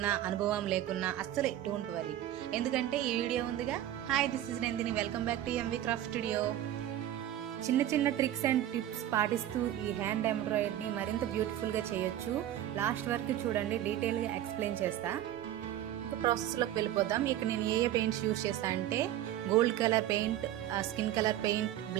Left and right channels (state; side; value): quieter; left; 12.4 dB